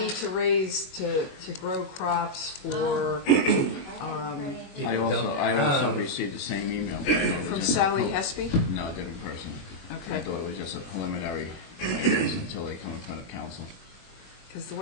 uh, to grow crops for, I didn't put anything. I also received the same email. but I thought it was from just a Sally pro- Hespy? No, different person. I Okay. thought it was just a preliminary, I guess, until they come in front of council. Because the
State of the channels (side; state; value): right; late; 21 ms